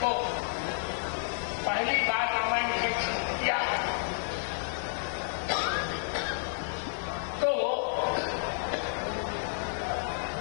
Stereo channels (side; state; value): right; silent; digital silence